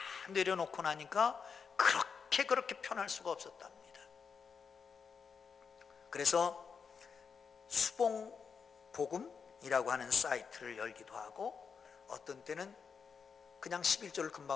내려놓고 나니까 그렇게 편할 수가 없었답니다. 그래서 수봉복음이라고 하는 사이트를 열기도 하고, 어떤 때는 그냥 11조를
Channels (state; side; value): quieter; right; 6.0 dB